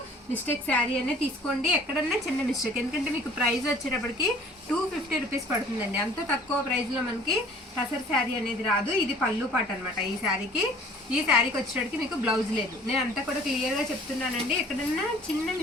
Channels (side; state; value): both; normal; correlation 0.51